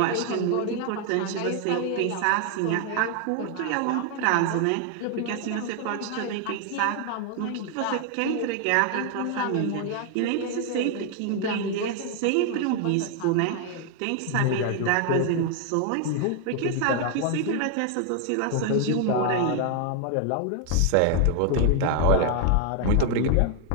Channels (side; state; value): both; different; correlation 0.00